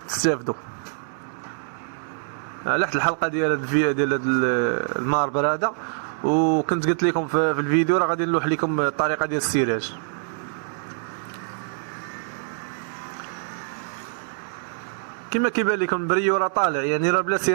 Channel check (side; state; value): left; silent; 62 dB below the other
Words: تستافدوا على حد الحلقه ديال هذا الماربر هذا. وكنت قلت لكم في الفيديو راه غادي نلوح لكم الطريقه ديال السراج. كما كيبان لكم البريو راه طالع، يعني راه بلا